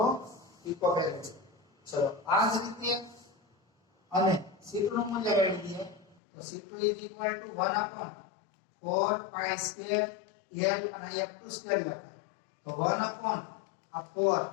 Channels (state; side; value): drops out; right; at 6.2 s